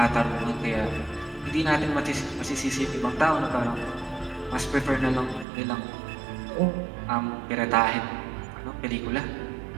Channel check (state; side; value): drops out; left; at 5.5 s